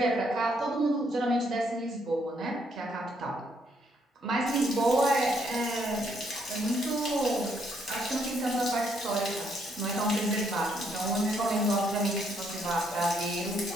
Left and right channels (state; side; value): normal; both; correlation 0.72